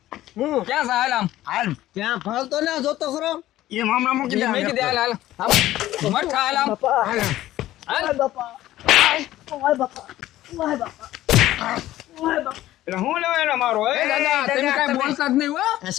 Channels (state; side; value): quieter; right; 14.7 dB